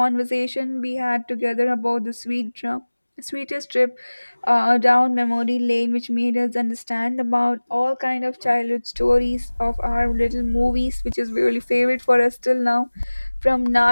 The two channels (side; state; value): both; inverted; correlation -1.00